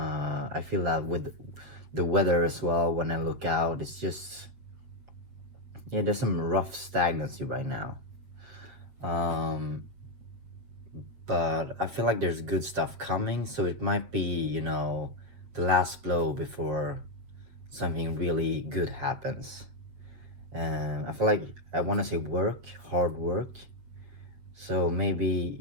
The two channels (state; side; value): late; left; 8.3 ms